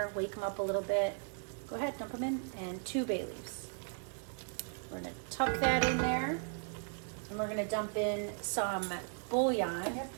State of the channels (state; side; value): silent; left; 53 dB below the other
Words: wake them up a little bit. Go ahead, dump them in, and 2 bay leaves. We're going to tuck that in there, and we're going to dump in some bouillon.